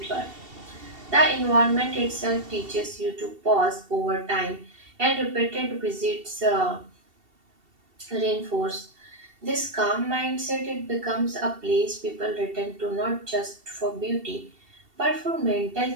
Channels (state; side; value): late; left; 2.7 ms